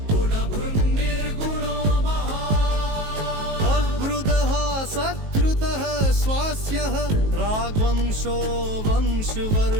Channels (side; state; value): left; late; 19 ms